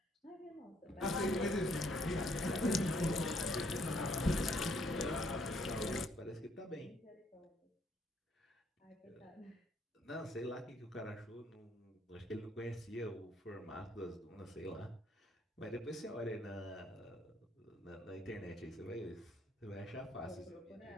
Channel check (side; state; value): both; normal; correlation 0.68